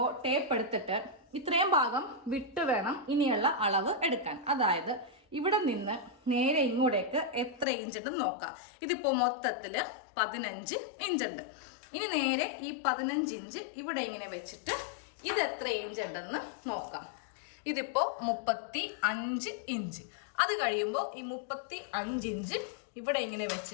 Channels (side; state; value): right; drops out; at 7.7 s